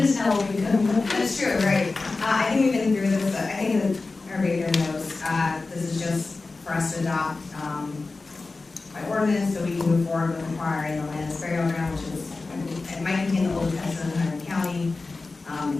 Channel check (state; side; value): quieter; right; 3.7 dB